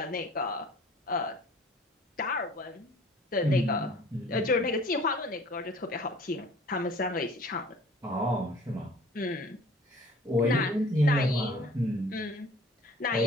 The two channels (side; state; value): both; normal; correlation 0.49